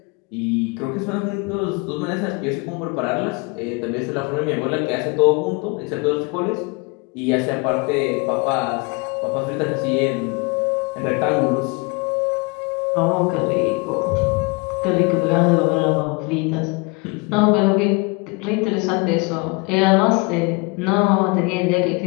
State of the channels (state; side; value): quieter; right; 28.5 dB